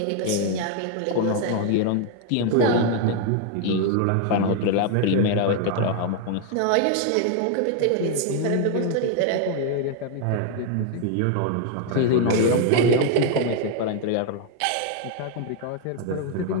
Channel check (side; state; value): both; different; correlation 0.00